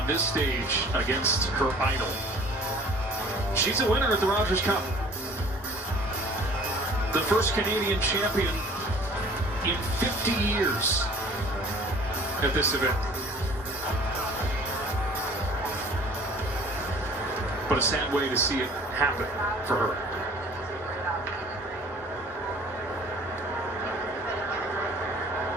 this stage against her idol. She's a winner at the Rogers Cup. The first Canadian champion in 50 years at this event. But a sad way to see it happen for her.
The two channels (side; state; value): both; normal; correlation 0.50